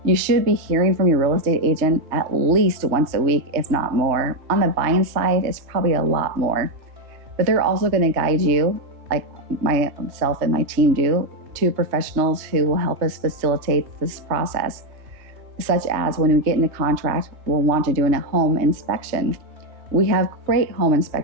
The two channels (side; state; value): left; late; 3.2 ms